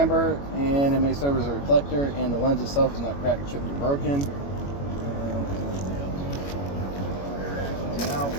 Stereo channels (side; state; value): right; late; 21 ms